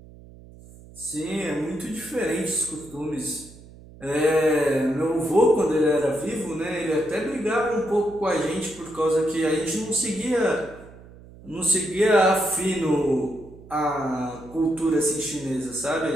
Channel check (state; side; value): noise; right; hum, 20 dB below the sound